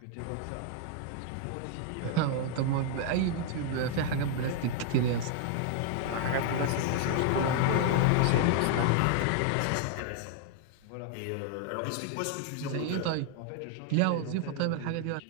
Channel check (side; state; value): both; different; correlation 0.00